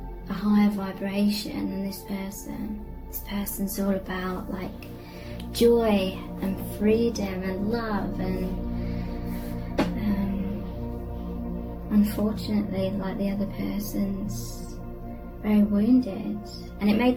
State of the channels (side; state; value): both; identical; correlation 1.00